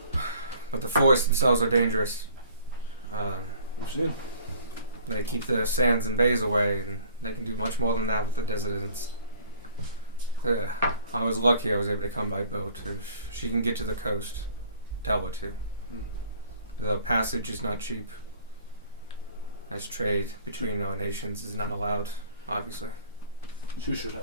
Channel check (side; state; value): both; inverted; correlation -0.52